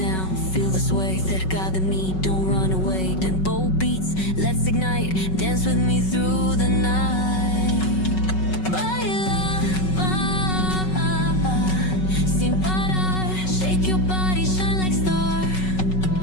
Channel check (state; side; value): late; right; 5.3 ms